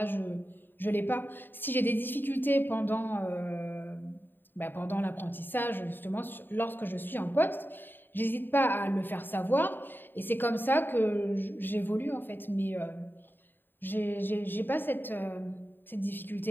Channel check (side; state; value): right; late; 0.094 ms